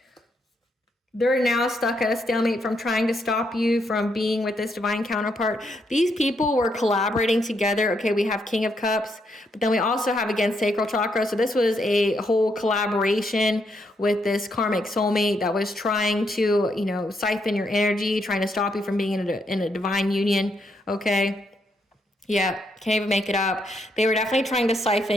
They're now stuck at a stalemate from trying to stop you from being with this divine counterpart. These people were collaborating together. Okay, we have King of Cups, but then we also have, again, Sacral Chakra. So this was a whole collaboration with this karmic soulmate that was trying to, siphon your energy, trying to stop you from being in a divine union. Okay. Yeah, can't even make it up. They were definitely trying to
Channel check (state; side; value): normal; both; correlation 0.77